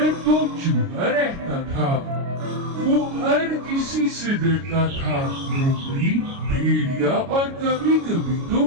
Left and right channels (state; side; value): late; left; 29 ms